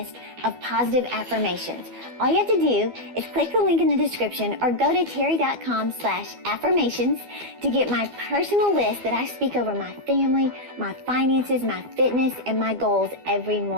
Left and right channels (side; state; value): left; late; 12 ms